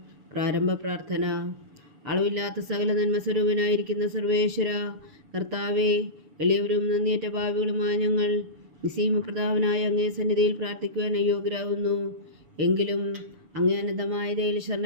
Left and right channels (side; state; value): left; late; 7.0 ms